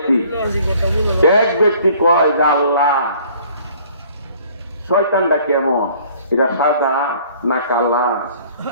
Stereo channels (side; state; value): both; inverted; correlation -0.55